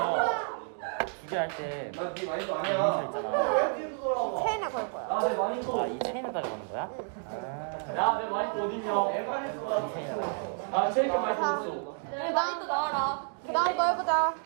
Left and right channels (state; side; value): silent; left; 58 dB below the other